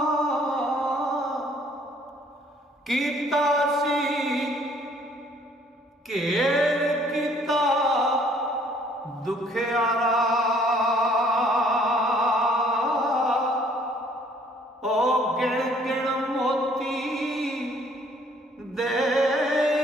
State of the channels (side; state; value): both; normal; correlation 0.60